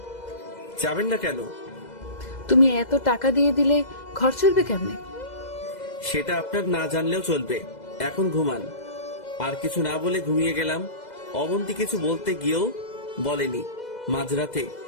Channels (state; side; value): late; right; 2.0 ms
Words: যাবেন না কেন? তুমি এত টাকা দিয়ে দিলে ঘর চলবে কেমনে? সেটা আপনার না জানলেও চলবে। এখন ঘুমান। আর কিছু না বলে ঘুমিয়ে গেলাম। অবন্তী কিছু বলতে গিয়েও বলেনি, মাঝরাতে